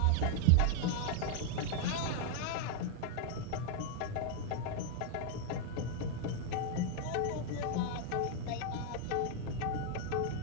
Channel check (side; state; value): both; different; correlation 0.00